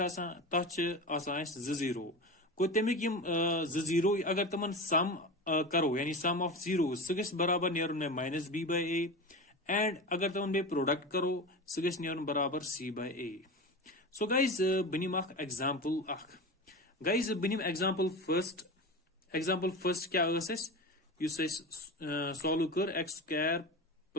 जीरो गो तमिक जीरो अगर तमन सम करो यानी सम ऑफ जीरो सह गस बराबर नेरुन में minus b by a and अगर तमन बे प्रोडक्ट करो सह गस नेरुन बराबर c bye a so guys बनिम एग्जाम्पल गाइज बनिम एग्जाम्पल फर्स्ट क्या सॉल्व कर x square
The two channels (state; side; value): normal; both; correlation 0.27